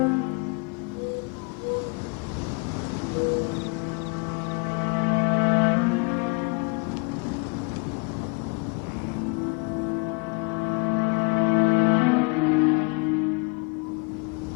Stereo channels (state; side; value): quieter; right; 32.7 dB